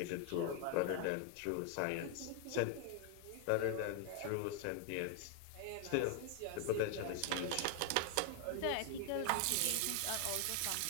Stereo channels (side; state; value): both; different; correlation 0.00